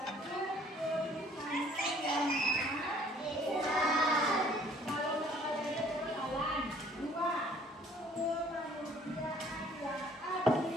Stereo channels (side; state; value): both; normal; correlation 0.57